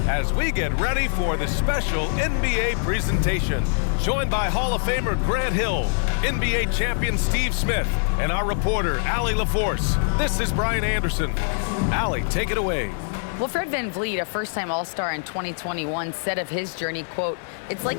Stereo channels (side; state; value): right; silent; 63 dB below the other